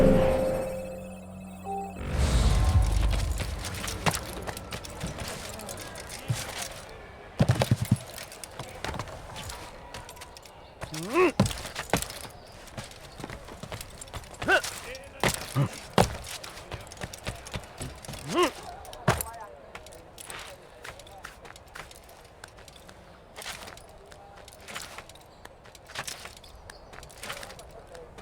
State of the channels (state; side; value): identical; both; correlation 1.00